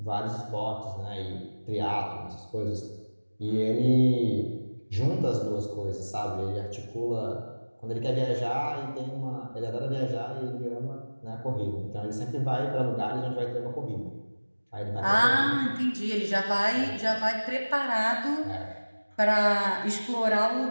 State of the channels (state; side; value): inverted; both; correlation -1.00